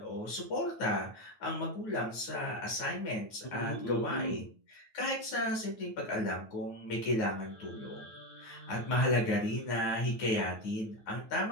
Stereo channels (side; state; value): right; late; 9.3 ms